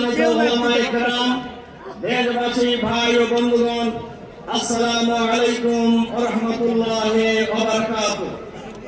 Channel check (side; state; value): both; identical; correlation 1.00